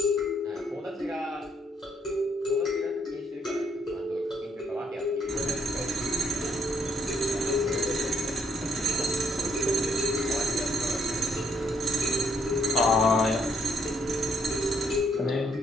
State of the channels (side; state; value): both; normal; correlation 0.70